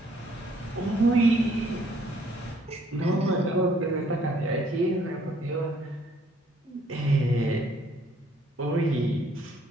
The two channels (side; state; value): both; normal; correlation 0.64